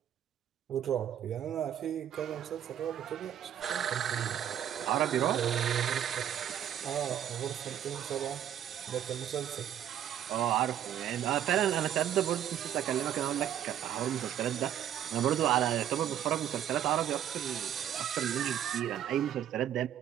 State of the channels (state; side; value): quieter; left; 10.5 dB